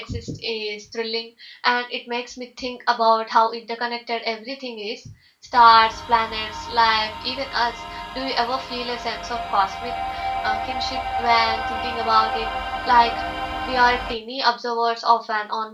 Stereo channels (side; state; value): both; identical; correlation 1.00